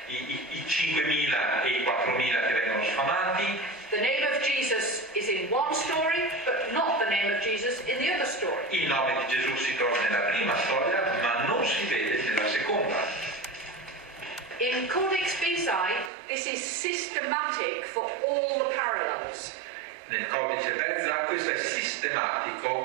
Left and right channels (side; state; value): left; drops out; at 16.1 s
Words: i 5.000 e i 4.000 che vengono sfamati. The name of Jesus is in one story, but not the name of Jesus in the other story. Il nome di Gesù si trova nella prima storia, ma non si vede nella seconda. In Codex Bezae, this is systematic for all the parallels. Nel codice Bezae questo è